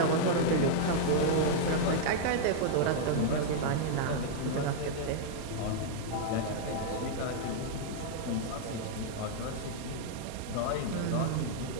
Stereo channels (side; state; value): both; different; correlation 0.00